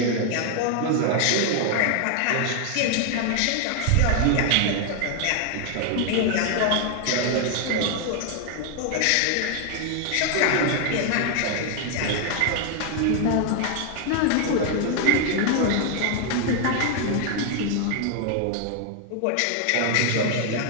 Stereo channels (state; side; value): different; both; correlation 0.00